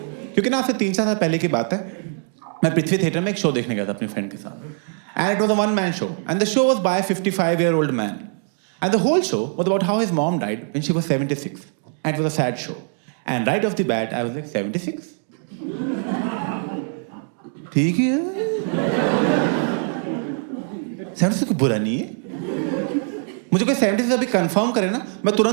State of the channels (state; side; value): silent; left; 55 dB below the other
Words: क्योंकि ना आपसे 3-4 साल पहले की बात है, मैं पृथ्वी थिएटर में एक शो देखने गया था अपनी फ्रेंड के साथ, and it was a one man show and the show was by 55-year-old man and the whole show was about how his mom died when she was 76 and it was a sad show and right off the bat I was like 76 ठीक है, 76 कोई बुरा नहीं है, मुझे कोई 76 अभी confirm करे ना, मैं